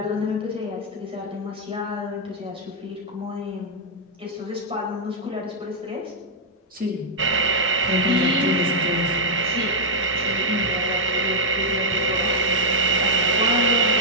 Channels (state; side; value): normal; both; correlation -0.04